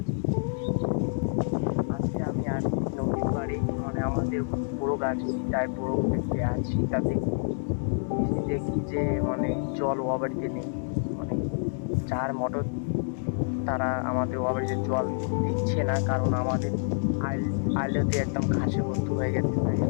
আজকে আমি আর নদীর পাড়ে, মানে আমাদের বড় গাছ সীতায় বড় গাছ সীতাতে এসে দেখি যে মানে জল ও বাড়িতে নেই। মানে যার মোটর তারা আমাদের ও বাড়িতে জল দিচ্ছে না, কারণ আমাদের আইলতে একদম ঘাসে ভর্তি হয়ে গেছে। তাই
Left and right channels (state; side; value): silent; right; digital silence